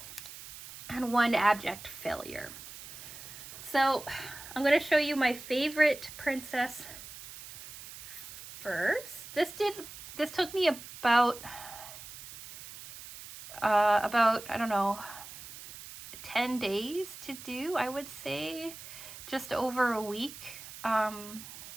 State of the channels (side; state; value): right; noise; hiss, 14 dB below the sound